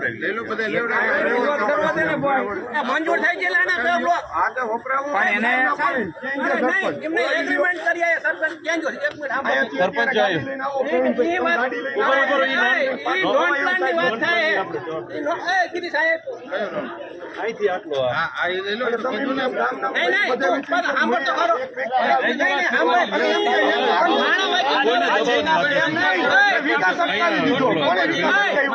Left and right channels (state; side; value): identical; both; correlation 1.00